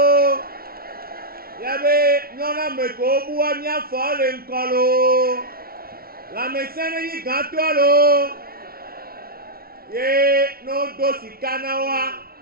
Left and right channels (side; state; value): left; late; 0.44 ms